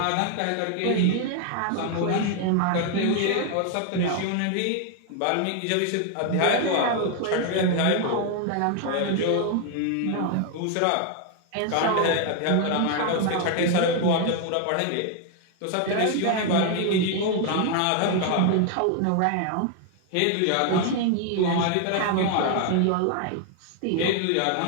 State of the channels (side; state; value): both; different; correlation 0.00